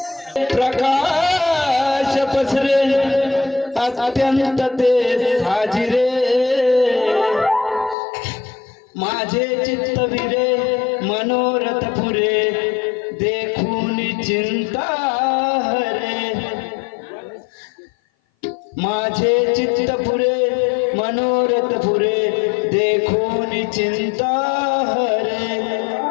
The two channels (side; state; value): right; drops out; at 8.0 s